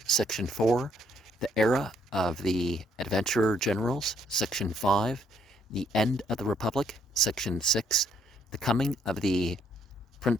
Section 4, The Era of the Adventurer Generals. Section 5, The End of the Republic. Section 6, The Coming of the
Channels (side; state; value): both; normal; correlation 0.68